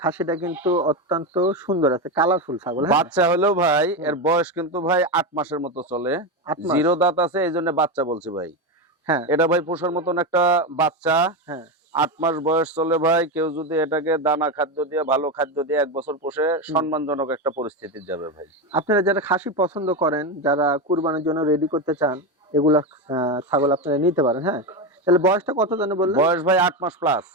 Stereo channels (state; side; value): normal; both; correlation 0.14